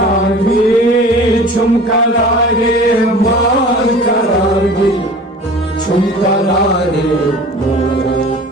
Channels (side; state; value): both; normal; correlation 0.42